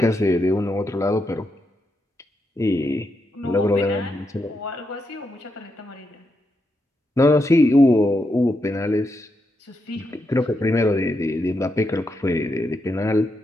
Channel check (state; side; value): normal; both; correlation 0.83